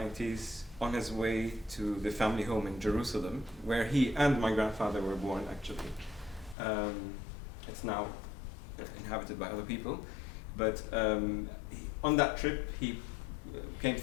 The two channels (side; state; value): right; drops out; at 6.6 s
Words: on his way to the family home in Jerusalem, where he and my grandfather were born, actually. It's now inhabited by other people, but on that trip he came